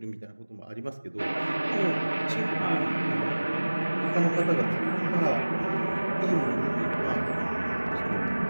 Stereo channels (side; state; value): both; inverted; correlation -1.00